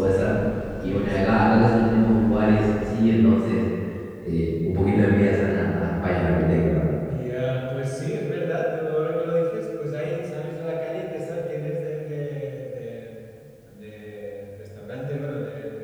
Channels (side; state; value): both; identical; correlation 1.00